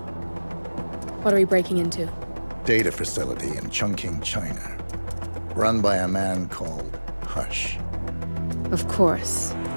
what are we breaking into? Data facility in Chongqing, China. Run by a man called Hush. Of course.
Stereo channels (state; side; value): inverted; both; correlation -1.00